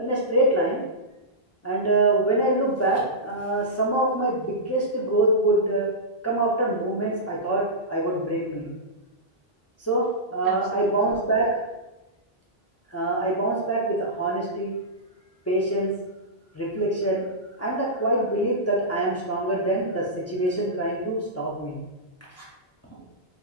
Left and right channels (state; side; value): normal; both; correlation -0.15